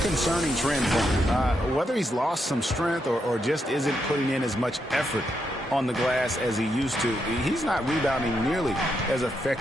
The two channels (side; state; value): both; normal; correlation 0.81